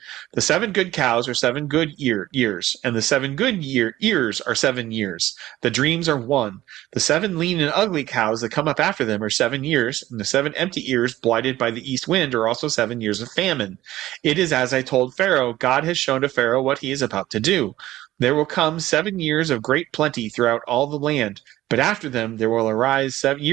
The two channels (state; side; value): quieter; left; 15.3 dB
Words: The 7 good cows are 7 good years, and the 7 good ears are 7 years. The dreams are one. The 7 lean and ugly cows that come up after them are 7 years, and the 7 empty ears blighted by the east wind are also 7 years of famine. It is as I told Pharaoh. God has shown to Pharaoh what he is about to do. There will come 7 years of great plenty throughout all the land, but after them there will arise 7